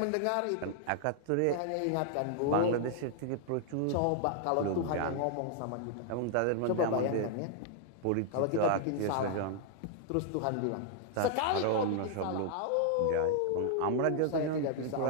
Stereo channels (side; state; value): both; different; correlation -0.01